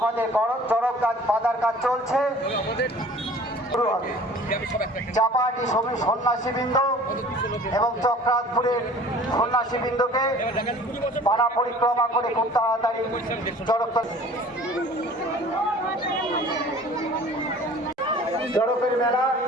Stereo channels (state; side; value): normal; both; correlation 0.47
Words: চড়ক কাজ বাঁধার কাজ চলছে, শুরু হবে। চাপাহাটি সন্ন্যাসীবৃন্দ এবং চক্রাতপুরের সন্ন্যাসীবৃন্দকে পাড়া পরিক্রমা করে খুব তাড়াতাড়ি চড়কের মেলা,